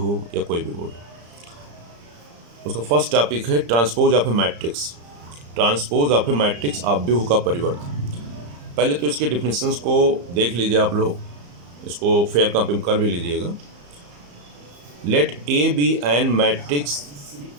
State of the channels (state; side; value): late; left; 34 ms